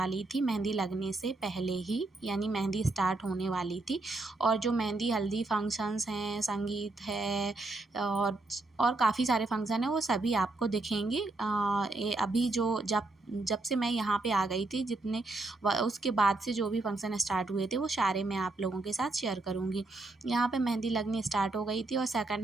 ली थी मेहंदी लगने से पहले ही, यानी मेहंदी स्टार्ट होने वाली थी। और जो मेहंदी हल्दी फंक्शंस हैं, संगीत है और काफ़ी सारे फंक्शन हैं वो सभी आपको दिखेंगे। ये अभी जब से मैं यहाँ पे आ गई थी उसके बाद से जो भी फंक्शन स्टार्ट हुए थे वो सारे मैं आप लोगों के साथ शेयर करूँगी। यहाँ पे मेहंदी लगनी स्टार्ट हो गई थी और सेकंड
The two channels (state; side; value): quieter; left; 3.1 dB